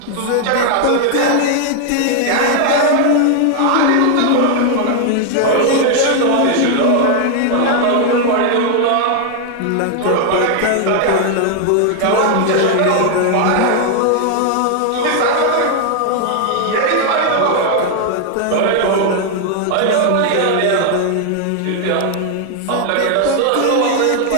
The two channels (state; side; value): different; both; correlation 0.00